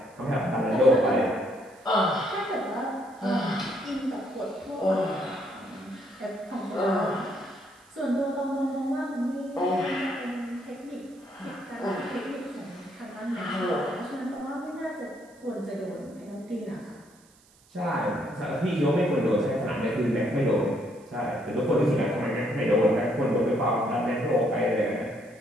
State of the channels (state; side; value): noise; right; hiss, 29 dB below the sound